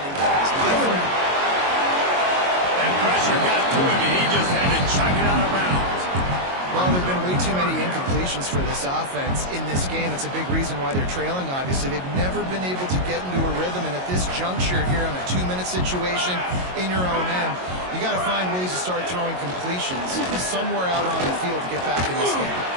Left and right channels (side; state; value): left; late; 22 ms